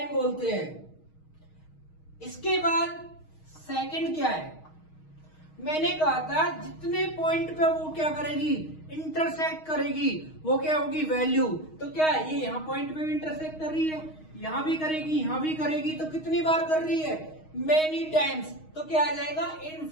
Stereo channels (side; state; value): right; late; 6.4 ms